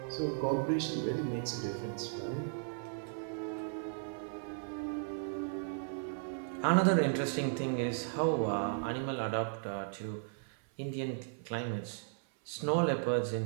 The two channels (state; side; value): silent; left; 54 dB below the other